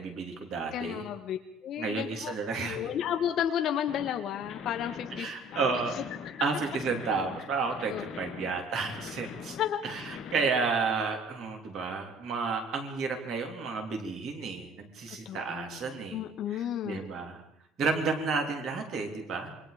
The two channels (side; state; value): both; normal; correlation 0.52